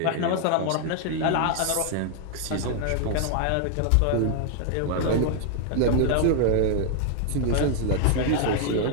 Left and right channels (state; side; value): different; both; correlation 0.00